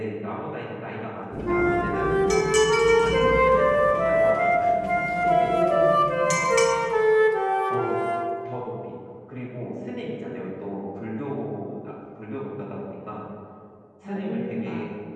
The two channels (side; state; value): both; identical; correlation 1.00